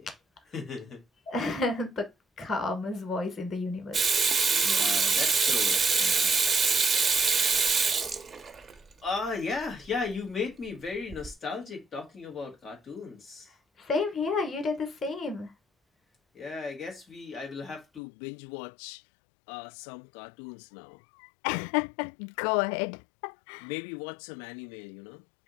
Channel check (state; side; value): drops out; right; at 18.0 s